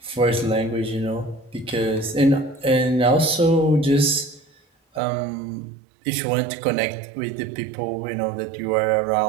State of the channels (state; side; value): drops out; left; at 5.0 s